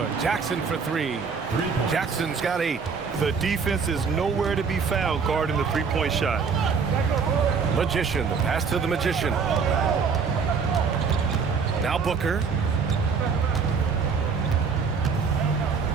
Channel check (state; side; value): quieter; left; 5.6 dB